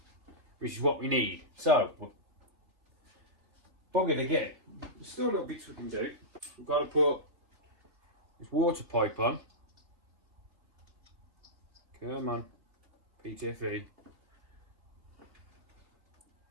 which is what we need. So we're buggered again. There's still little bits we can do. We've got to put this water pipe on. Come on, PTFE.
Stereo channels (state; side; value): late; left; 3.3 ms